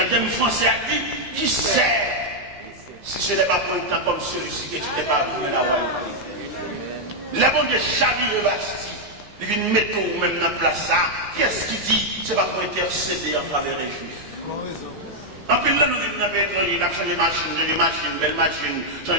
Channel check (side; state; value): left; late; 14 ms